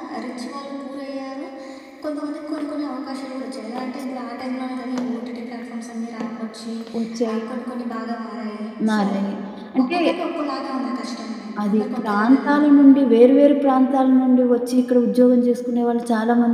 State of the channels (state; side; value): identical; both; correlation 1.00